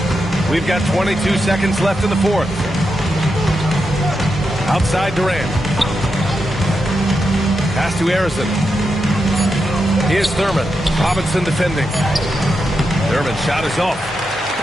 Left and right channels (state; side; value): normal; both; correlation 0.86